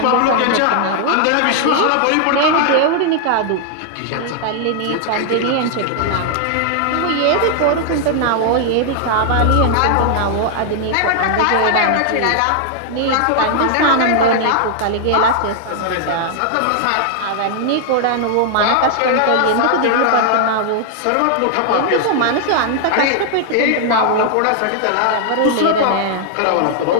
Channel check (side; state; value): both; different; correlation 0.00